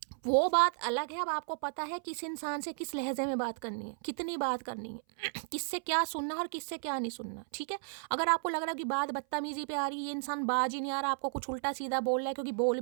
वो बात अलग है। अब आपको पता है किस इंसान से किस लहजे में बात करनी है, कितनी बात करनी है, किससे क्या सुनना और किससे क्या नहीं सुनना, ठीक है। अगर आपको लग रहा है कि बात बदतमीजी पे आ रही है, ये इंसान बाज ही नहीं आ रहा, आपको कुछ उल्टा सीधा बोल रहा है, क्योंकि बोल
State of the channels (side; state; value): left; silent; 55 dB below the other